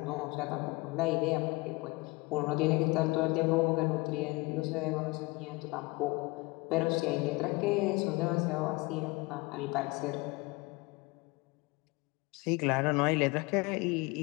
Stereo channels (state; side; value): quieter; right; 24.5 dB